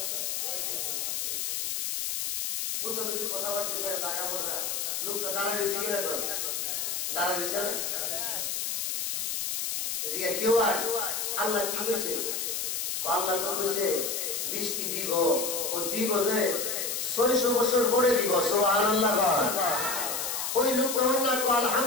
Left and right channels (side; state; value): left; noise; hiss, 2 dB below the sound